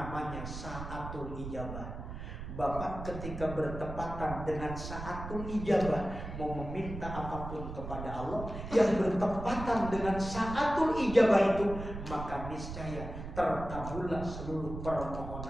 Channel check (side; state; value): right; noise; rumble, 8 dB below the sound